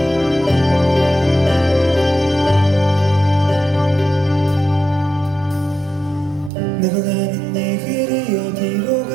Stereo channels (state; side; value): drops out; left; at 6.5 s